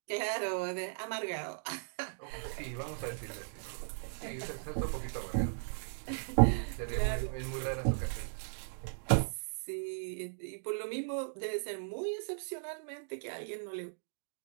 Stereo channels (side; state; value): left; silent; digital silence